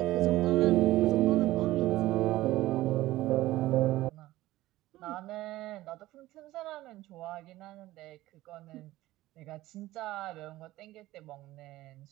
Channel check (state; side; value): quieter; left; 16.7 dB